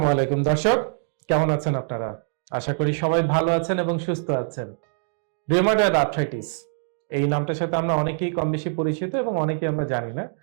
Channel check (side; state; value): left; silent; digital silence